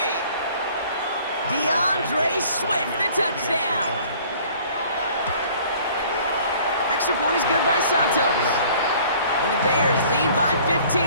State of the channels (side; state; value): both; inverted; correlation -0.53